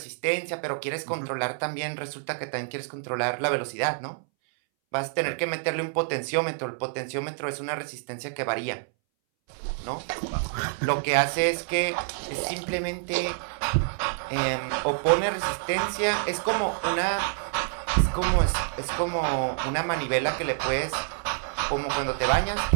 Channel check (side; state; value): left; silent; 60 dB below the other